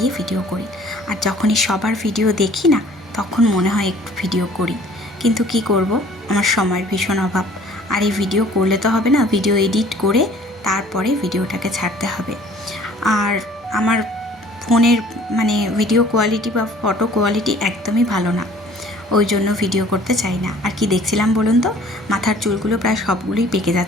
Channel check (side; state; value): both; normal; correlation 0.53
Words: ভিডিও করি। আর যখনই সবার ভিডিও দেখি না, তখন মনে হয় একটু ভিডিও করি, কিন্তু কি করব, আমার সময়ের ভীষণ অভাব। আর এই ভিডিও করলে তো হবে না, ভিডিও এডিট করে তারপরে ভিডিওটাকে ছাড়তে হবে। আর আমার ফোনের ভিডিও কোয়ালিটি বা ফটো কোয়ালিটি একদমই ভালো না, ওই জন্য ভিডিও করতে চাই না। আর কি দেখছিলাম বলুন তো, মাথার চুলগুলো প্রায় সবগুলোই পেকে